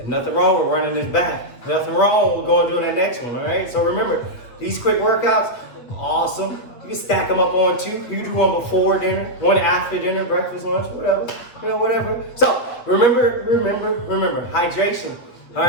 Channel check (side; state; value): right; late; 8.6 ms